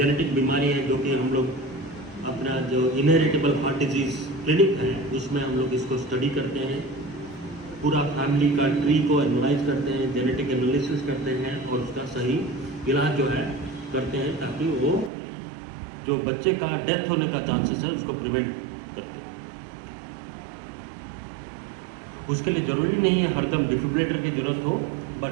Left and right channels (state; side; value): drops out; left; at 15.1 s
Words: बीमारी है जो कि हम लोग अपना जो इनहेरिटेबल हार्ट डिजीज़ क्लिनिक है उसमें हम लोग इसको स्टडी करते हैं, पूरा फैमिली का ट्री को एनालाइज करते हैं, जेनेटिक एनालिसिस करते हैं और उसका सही इलाज जो है करते हैं, ताकि वो जो बच्चे का डेथ होने का चांसेस है उसको प्रिवेंट करते हैं। उसके लिए ज़रूरी नहीं है हरदम डिफिब्रिलेटर की ज़रूरत हो,